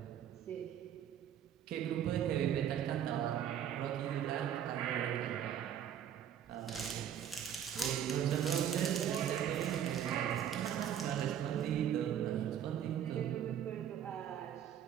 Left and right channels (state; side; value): quieter; left; 9.7 dB